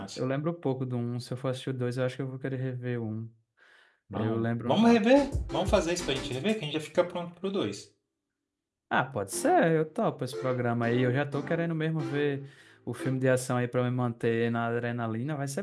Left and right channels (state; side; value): identical; both; correlation 1.00